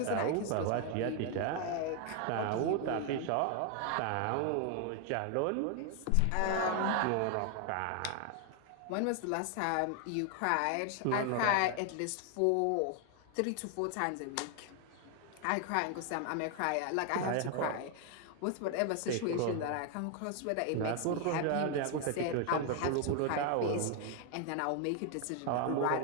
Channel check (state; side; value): different; both; correlation 0.01